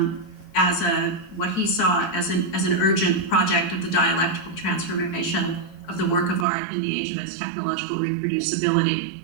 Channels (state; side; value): drops out; left; at 6.5 s